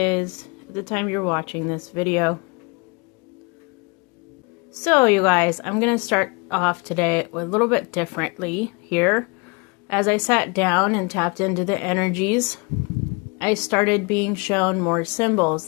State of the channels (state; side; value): quieter; right; 29.7 dB